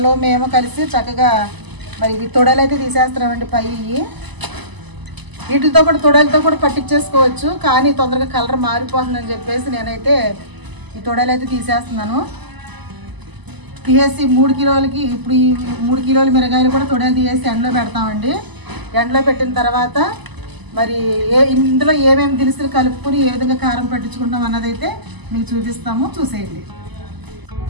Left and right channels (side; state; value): left; late; 1.0 ms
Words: మేము కలిసి చక్కగా మరి ఇవి తొడలు అయితే తీసేస్తున్నామండి. పై వీటితో కూడా తొడలతో కూడా పట్టించేసుకోవచ్చు, కానీ తొందరగా కలర్ మారిపోతుందని చెప్పేసి నేనైతే ఈ తొడలు అయితే తీసేస్తున్నాను. తీసేసి 3 కిలోలకి ఇప్పుడు ఈ 3 కిలోల మిరగాయలు కూడా తొడలు తీసేసి ఎండలో పెడతామండి. ఎండలో పెట్టిన తర్వాత మరి ఇందులో ఏమేమి దినుసులు కలుపుకొని ఏ విధంగా కారం పట్టించుకుంటాం అన్నదైతే మీకు చూపిస్తాము, చూసేయండి.